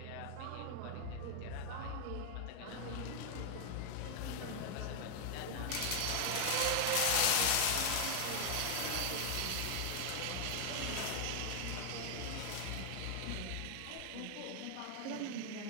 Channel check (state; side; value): different; both; correlation 0.00